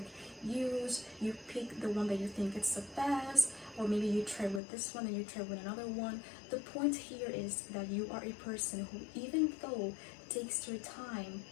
use. You pick the one that you think is the best, or maybe you try with this one and you try with another one. The point here is that you are a person who, even though it takes their time,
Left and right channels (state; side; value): drops out; right; at 4.6 s